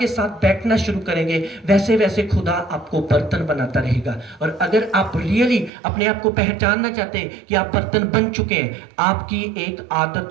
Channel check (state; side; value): drops out; left; at 5.7 s